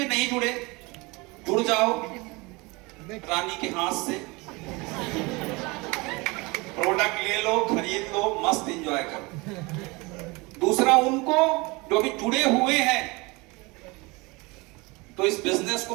नहीं जुड़े, जुड़ जाओ रानी के हाथ से, प्रोडक्ट ले लो, खरीद लो, मस्त एंजॉय करो। दूसरा उनको जो भी जुड़े हुए हैं तो इस बिजनेस को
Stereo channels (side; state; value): left; quieter; 25.3 dB